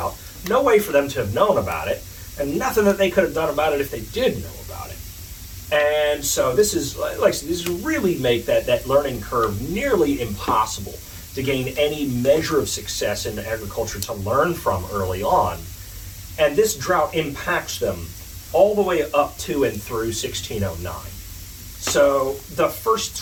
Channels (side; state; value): both; identical; correlation 1.00